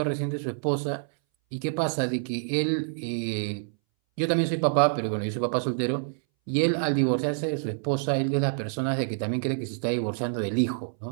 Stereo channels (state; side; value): silent; left; 60 dB below the other